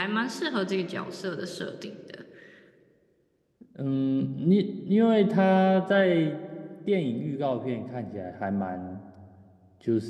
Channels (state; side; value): identical; both; correlation 1.00